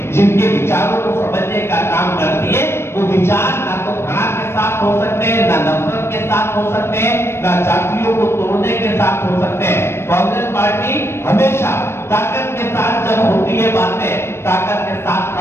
जिनके विचारों को समझने का काम करती है, वो विचार ना तो घृणा के साथ हो सकते हैं, ना नफरत के साथ हो सकते हैं, ना जातियों को तोड़ने के साथ हो सकते हैं. कांग्रेस पार्टी हमेशा ताकत के साथ जब होती है बातें, ताकत के साथ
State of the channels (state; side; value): late; right; 0.12 ms